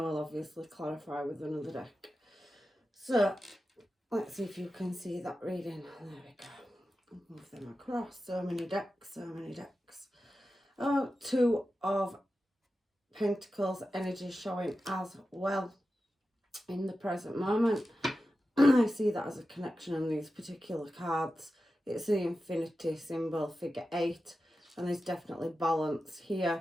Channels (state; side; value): normal; both; correlation 0.92